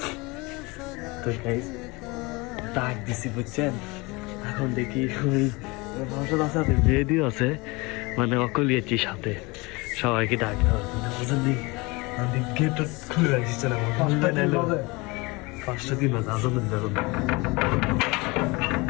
তো গাইস ডাক দিছি, বুঝছেন? এখন দেখি ওই রেডি আছে, মানে অকলিয়েছি সাথে সবাইকে ডাক দেওয়ার জন্য, বুঝলি? গেট খুলে রাখছি না, 5টা দিন বাজে আজান দেবে।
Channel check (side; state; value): right; quieter; 25.2 dB